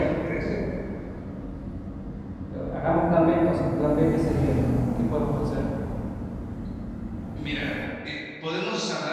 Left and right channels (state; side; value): identical; both; correlation 1.00